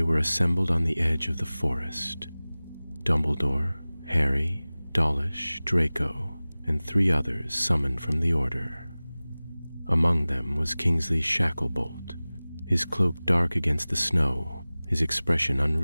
were assembled on the edge of the forest. Dumbledore, Harry, Dawlish, Draco, and 3 others summoned from the Order. Among them was Kingsley Shacklebolt, his cloak dark against the snow, his expression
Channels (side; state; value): both; inverted; correlation -0.99